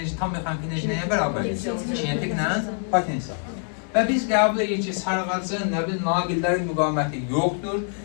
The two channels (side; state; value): right; silent; 57 dB below the other